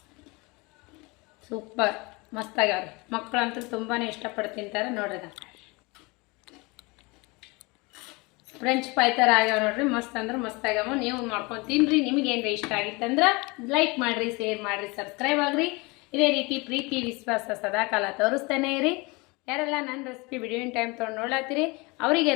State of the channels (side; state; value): right; quieter; 26.3 dB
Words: ಸೂಪರ್ ಮಸ್ತ್ ಆಗ್ಯಾವ್ರಿ. ಮಕ್ಕಳಂತೂ ತುಂಬಾ ಇಷ್ಟಪಟ್ಟು ತಿಂತಾರೆ ನೋಡ್ರಿ. ಫ್ರೆಂಚ್ ಫ್ರೈ ಥರ ಆಗ್ಯಾವ ನೋಡ್ರಿ, ಮಸ್ತ್ ಅಂದ್ರೆ ಮಸ್ತ್ ಆಗ್ಯಾವ. ನೀವು ಮಾಡ್ಕೊಂಡು ತಿನ್ನಿರಿ. ನಿಮಗೇನ್ರಿ ಇಷ್ಟ ಆಗಿತ್ತಂದ್ರೆ ಲೈಕ್ ಮಾಡಿರಿ, ಶೇರ್ ಮಾಡಿರಿ, ಸಬ್ಸ್ಕ್ರೈಬ್ ಆಗಿರಿ. ಇದೇ ರೀತಿ ಪ್ರೀತಿ ವಿಶ್ವಾಸ ಸದಾ ಕಾಲ ತೋರಿಸ್ತಾನೆ ಇರಿ. ಯಾರೆಲ್ಲ ನನ್ನ ರೆಸಿಪಿ ವಿಡಿಯೋನ್ ಟೈಮ್ ತೊಗೊಂಡು ನೋಡ್ಲಾತ್ತೀರಿ